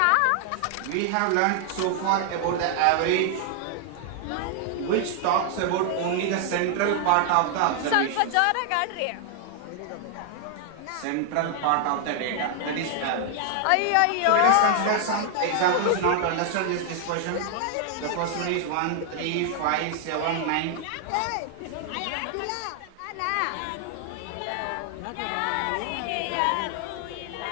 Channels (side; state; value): both; different; correlation 0.00